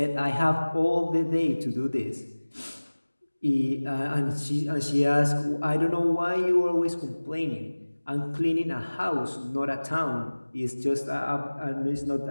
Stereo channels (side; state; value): both; inverted; correlation -1.00